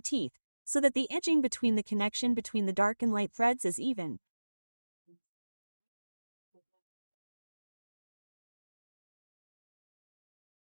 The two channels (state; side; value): inverted; both; correlation -1.00